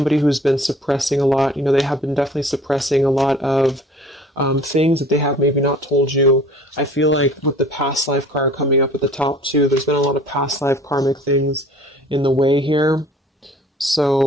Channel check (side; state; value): both; normal; correlation 0.49